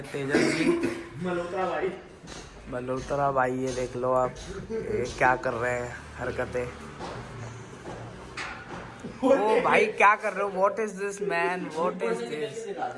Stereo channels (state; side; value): identical; both; correlation 1.00